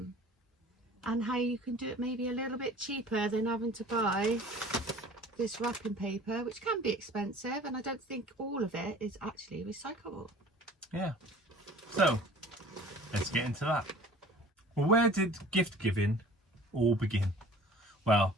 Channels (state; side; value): normal; both; correlation 0.47